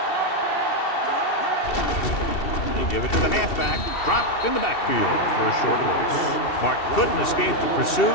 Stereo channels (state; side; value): late; right; 2.7 ms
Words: They give it to the halfback. Dropped in the backfield for a short loss. Martin couldn't escape the pursuit